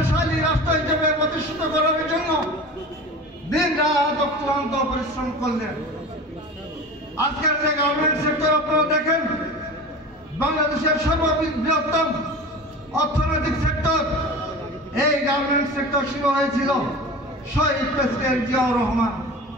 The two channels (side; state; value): both; normal; correlation 0.34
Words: রাষ্ট্র হিসেবে প্রতিষ্ঠিত করার জন্য দিন রাত অক্লান্ত পরিশ্রম করলেন। আজকের যে গার্মেন্ট সেক্টর আপনারা দেখেন, বাংলাদেশের সর্ববৃহত্তম অর্থনৈতিক সেক্টর, এই গার্মেন্ট সেক্টর শুরু হয়েছিল শহীদ প্রেসিডেন্ট জিয়াউর রহমান।